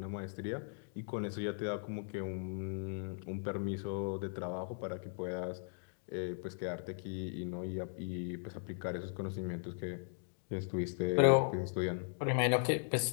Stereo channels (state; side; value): silent; right; digital silence